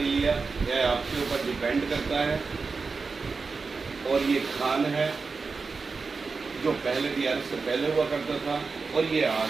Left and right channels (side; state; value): left; quieter; 4.5 dB